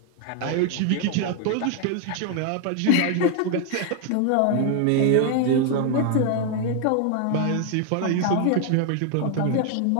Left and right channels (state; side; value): different; both; correlation 0.01